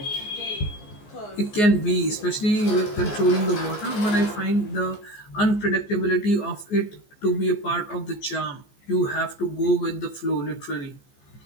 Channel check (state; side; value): late; right; 14 ms